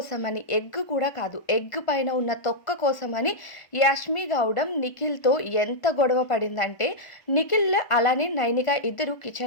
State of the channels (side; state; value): right; late; 1.4 ms